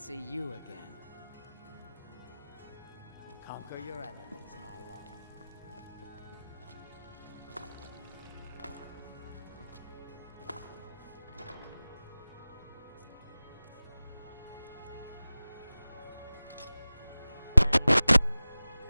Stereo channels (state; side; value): inverted; both; correlation -0.98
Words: you again. Conquer your enemies, my love.